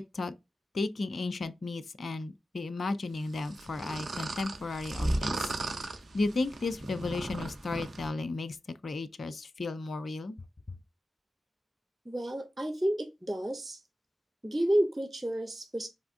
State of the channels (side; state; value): both; normal; correlation 0.93